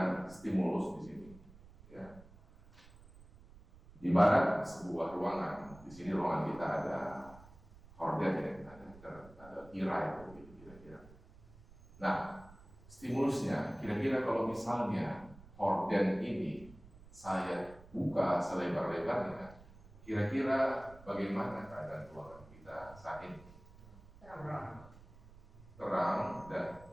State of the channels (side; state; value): right; noise; rumble, 21 dB below the sound